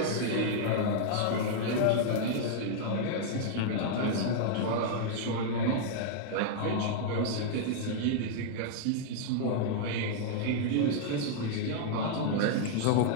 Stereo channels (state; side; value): different; both; correlation -0.01